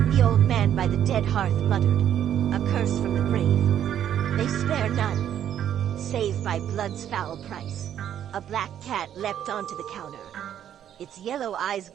The old man by the dead hearth muttered, a curse from the grave. They spare none, save by blood's foul price. A black cat leapt onto the counter, its yellow eyes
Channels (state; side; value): quieter; left; 10.2 dB